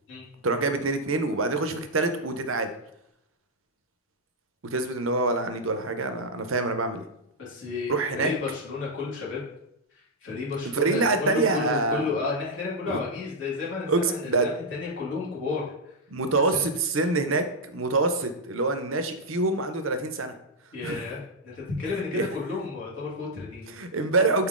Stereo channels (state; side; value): normal; both; correlation -0.03